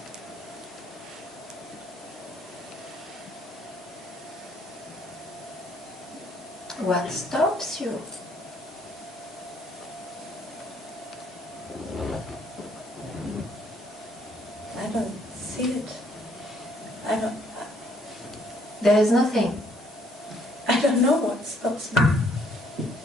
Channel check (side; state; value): both; normal; correlation 0.66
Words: what stops you? I don't see it. There is nothing. I don't know what stops me.